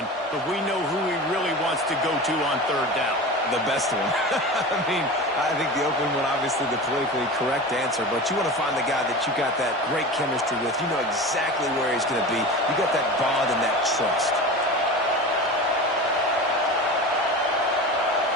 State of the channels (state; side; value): normal; both; correlation 0.31